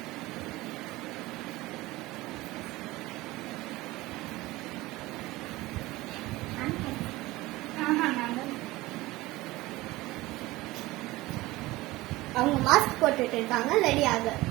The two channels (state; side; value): quieter; left; 19.3 dB